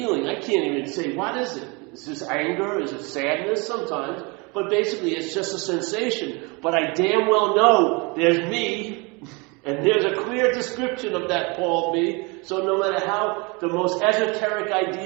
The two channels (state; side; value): quieter; left; 29.0 dB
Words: I can't even say, what is it? Is this anger? Is it sadness? Sometimes. But basically it's just a sensation. But I damn well know there's me, and there's a clear description of that called me. So no matter how the most esoteric